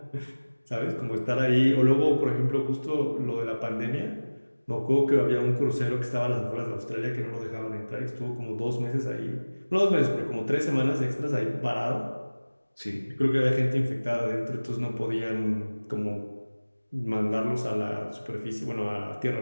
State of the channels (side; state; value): both; inverted; correlation -1.00